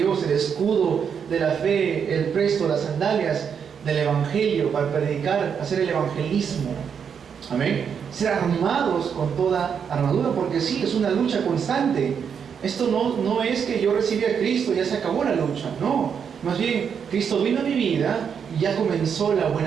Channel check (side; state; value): left; quieter; 7.2 dB